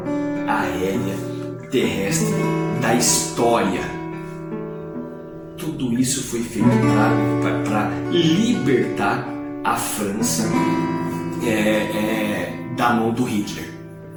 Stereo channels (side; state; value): both; identical; correlation 1.00